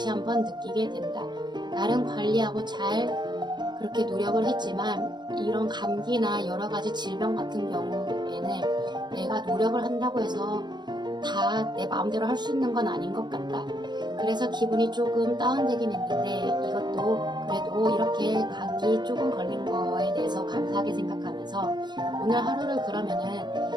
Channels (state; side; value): late; left; 0.21 ms